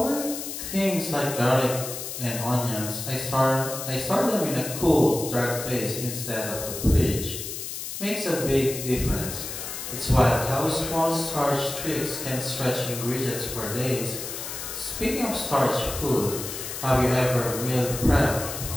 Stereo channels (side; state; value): left; noise; hiss, 7 dB below the sound